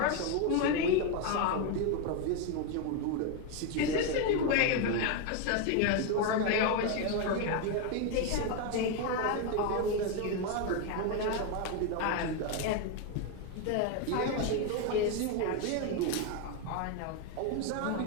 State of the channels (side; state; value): both; different; correlation 0.02